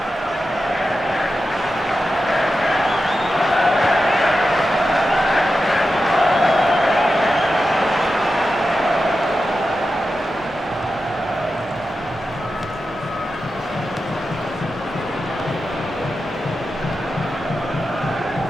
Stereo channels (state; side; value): normal; both; correlation 0.91